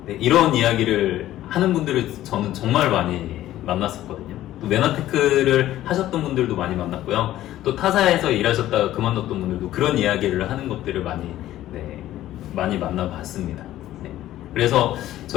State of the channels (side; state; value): right; quieter; 13.9 dB